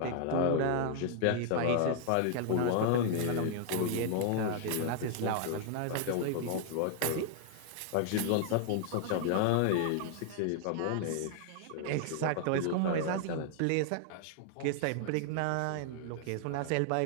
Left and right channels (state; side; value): different; both; correlation 0.00